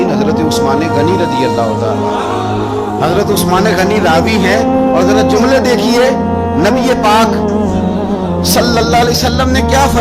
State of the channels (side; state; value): both; identical; correlation 1.00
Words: حضرت عثمان غنی رضی اللہ تعالیٰ، حضرت عثمان غنی راوی ہیں۔ اور ذرا جملے دیکھیے، نبی پاک صلی اللہ علیہ وسلم نے کیا